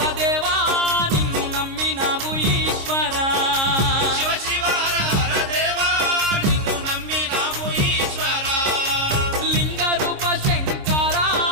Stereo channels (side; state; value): left; late; 26 ms